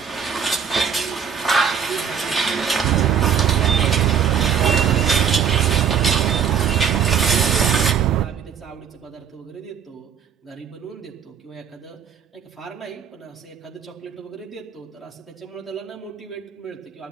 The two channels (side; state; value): left; quieter; 7.5 dB